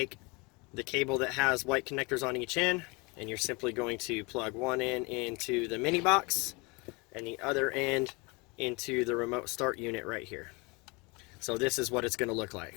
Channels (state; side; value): quieter; right; 27.7 dB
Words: the cable that has white connectors on each end, and you're simply going to plug one end into the mini box and the other end into the remote start unit right here. So this is what it's going to look